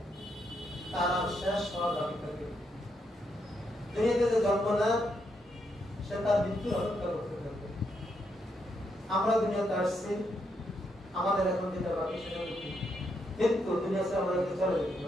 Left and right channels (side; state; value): both; normal; correlation 0.79